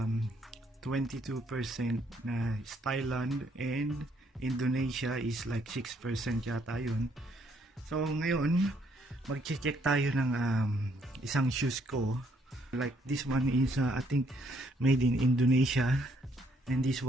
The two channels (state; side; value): normal; both; correlation 0.69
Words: 22% na Thailand and Indonesia is like 6% yata yun. So ngayon mag-check tayo ng isang shoes ko. Like this one is I think made in Indonesia, and this